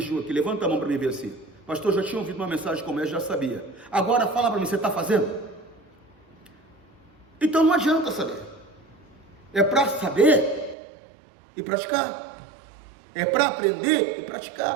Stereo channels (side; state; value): left; drops out; at 10.8 s